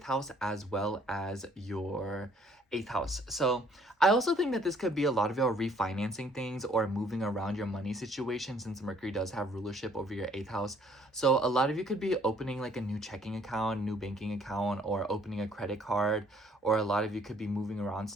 house as well as your 8th house. So I also think that this could be a lot of y'all refinancing things or moving around your money situation, since Mercury does have rulership over your 8th house. So a lot of you could be opening like a new checking account, new banking account, or opening a credit card, or a lot of you could be moving around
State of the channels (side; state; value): both; normal; correlation 0.61